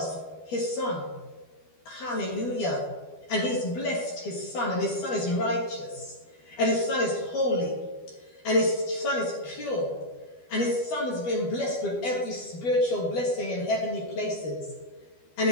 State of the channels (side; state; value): right; late; 12 ms